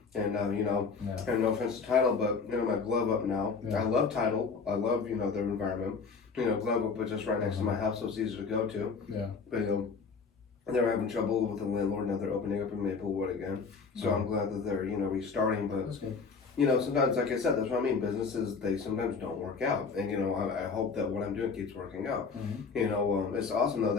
And, and no offense to Title, but, my Glove Up now. Yeah. I love Title. I love, their environment. Glove Up was just right next to my house, so it's easy to go to. Yeah. But, they were having trouble with the landlord. Now they're opening up in Maplewood again. So I'm glad that they're, restarting. But that's good. sometimes, like I said, that's what I mean. Businesses, they sometimes don't work out. And, I hope that what I'm doing keeps working out. It's awesome, though,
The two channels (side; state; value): right; quieter; 5.1 dB